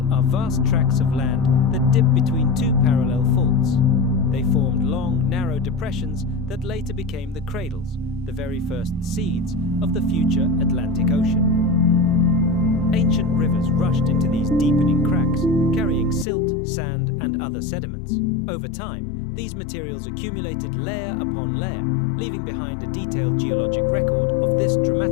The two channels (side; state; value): right; drops out; at 16.2 s